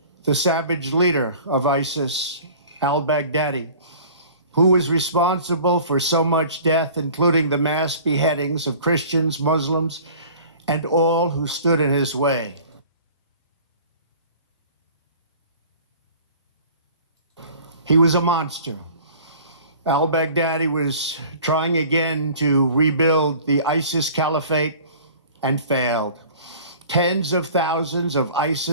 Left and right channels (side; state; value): both; inverted; correlation -0.46